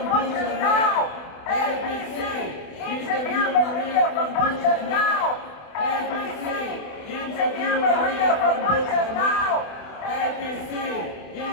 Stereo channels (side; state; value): right; late; 28 ms